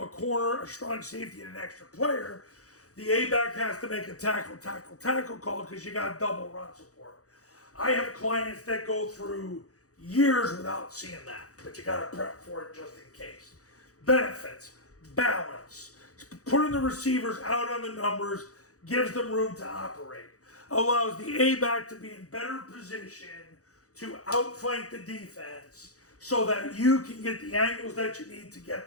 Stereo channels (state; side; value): late; right; 0.66 ms